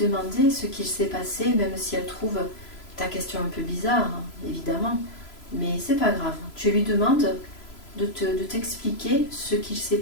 ce qu'il s'est passé, même si elle trouve ta question un peu bizarre, hein, évidemment. Mais c'est pas grave. Tu lui demandes de t'expliquer ce qu'il s'est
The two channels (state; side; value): late; right; 3.0 ms